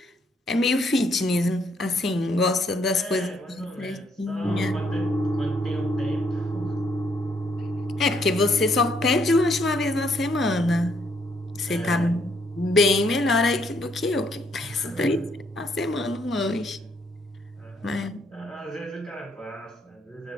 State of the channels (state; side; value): normal; both; correlation 0.71